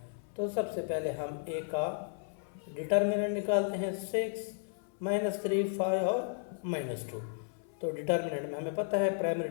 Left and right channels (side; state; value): right; silent; 55 dB below the other